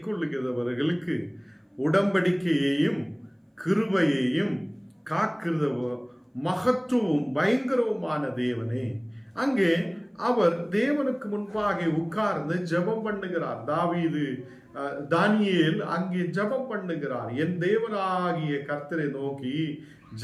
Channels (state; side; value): identical; both; correlation 1.00